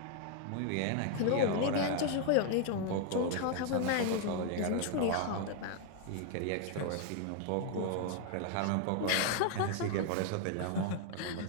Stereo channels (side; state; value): both; different; correlation 0.00